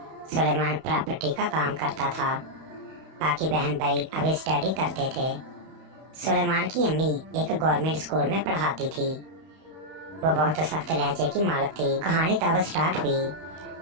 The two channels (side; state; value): left; late; 31 ms